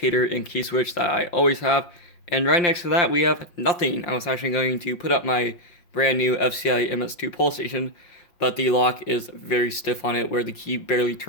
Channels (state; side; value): late; right; 5.7 ms